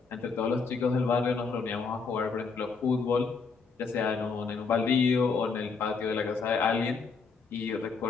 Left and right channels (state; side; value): quieter; right; 5.0 dB